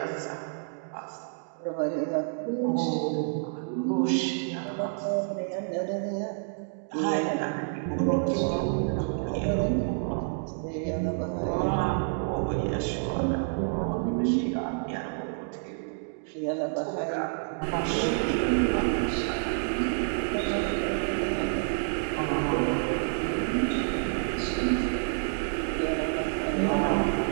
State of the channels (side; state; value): left; silent; digital silence